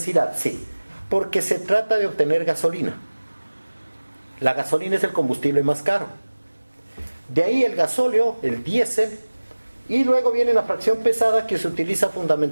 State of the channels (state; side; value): inverted; both; correlation -1.00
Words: sí, porque se trata de obtener gasolina. La gasolina es el combustible más caro. De ahí el gasóleo, el diésel, y luego viene la fracción pesada, que se utiliza